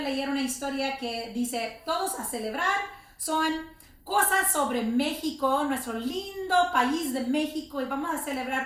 una historia que dice, todos a celebrar, son cosas sobre México, nuestro lindo país de México, y vamos a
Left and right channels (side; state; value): both; identical; correlation 1.00